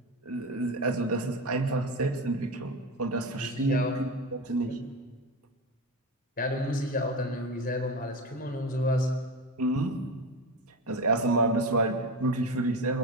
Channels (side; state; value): both; normal; correlation 0.24